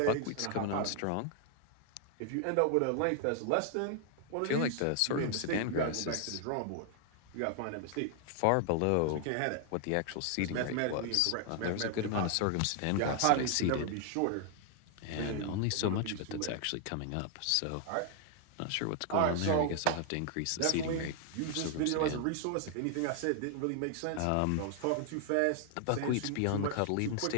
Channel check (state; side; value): different; both; correlation 0.00